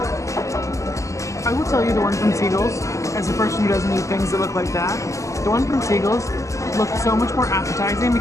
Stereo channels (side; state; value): right; late; 0.16 ms